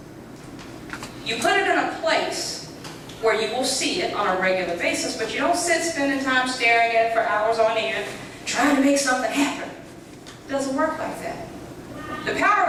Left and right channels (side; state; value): both; identical; correlation 1.00